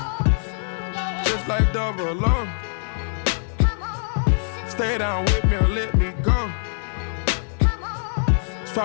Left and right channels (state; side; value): silent; right; digital silence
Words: Just like double O. Stay down with me or let me go.